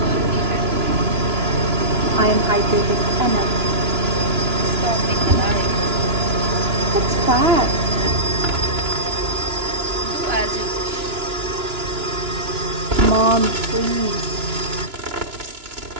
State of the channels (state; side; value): late; left; 2.9 ms